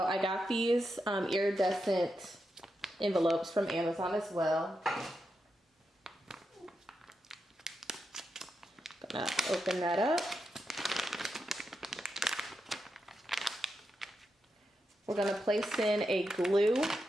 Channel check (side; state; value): both; normal; correlation 0.86